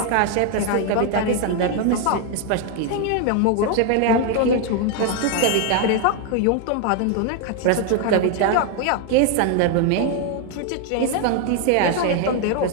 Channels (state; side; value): different; both; correlation 0.01